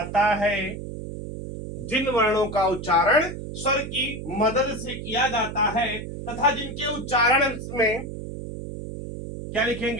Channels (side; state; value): right; noise; hum, 8 dB below the sound